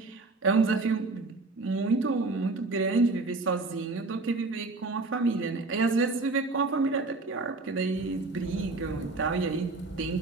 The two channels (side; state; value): left; quieter; 3.5 dB